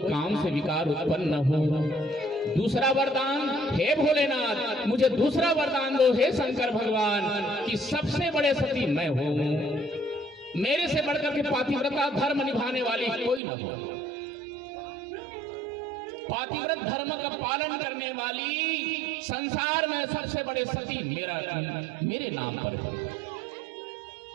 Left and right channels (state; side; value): drops out; left; at 13.4 s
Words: से विकार उत्पन्न न हो। दूसरा वरदान, हे भोलेनाथ, मुझे दूसरा वरदान दो हे शंकर भगवान, कि सबसे बड़े सती मैं हूं, मेरे से बढ़कर के पातिव्रता धर्म निभाने वाली कोई न हो। पातिव्रत धर्म का पालन करने वाली संसार में सबसे बड़े सती मेरे नाम पर है।